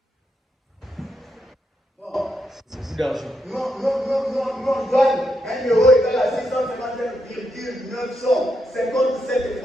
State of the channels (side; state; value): both; normal; correlation 0.81